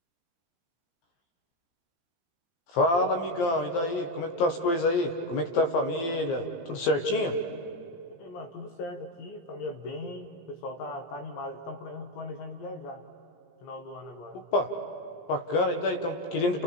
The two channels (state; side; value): late; right; 18 ms